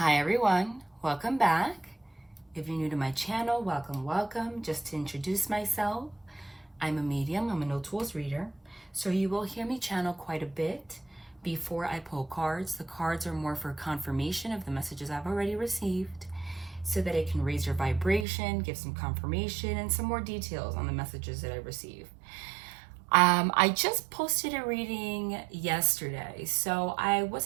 everyone, welcome back. If you're new to my channel, welcome. Just to introduce myself, I'm a medium, I'm a no tools reader. So you will hear me channel quite a bit before I pull cards. The cards are more for confirmation of the messages I've already received so that it can raise your vibration, give some confirmation and some more details on the messages that I receive. I just posted a reading yesterday, so I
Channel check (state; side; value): drops out; left; at 18.2 s